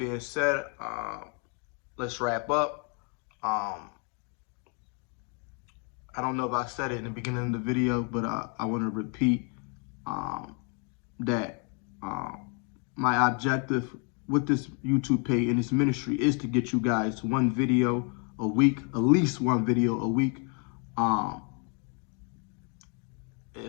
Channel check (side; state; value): right; quieter; 38.0 dB